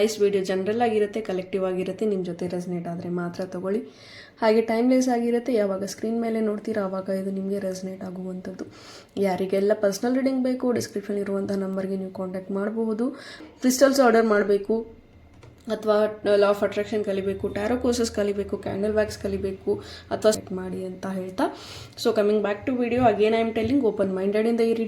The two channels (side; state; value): both; identical; correlation 1.00